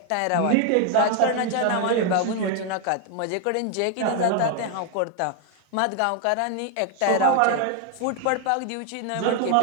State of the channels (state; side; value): different; both; correlation 0.01